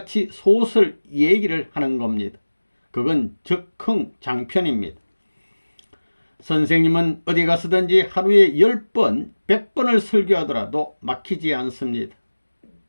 소설 얘기를 하는 겁니다. 그건 즉흥 장편입니다. 선생님은 어디 가서든지 하루에 10번, 100번을 설교하더라도 막히지 않습니다.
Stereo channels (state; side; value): inverted; both; correlation -1.00